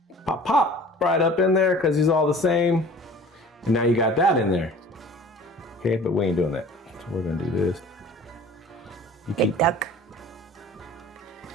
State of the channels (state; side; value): normal; both; correlation 0.45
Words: pop right up in there because he's all the same. And now you got that in there. Okay, but we ain't doing that. So we're gonna do this. You Big duck.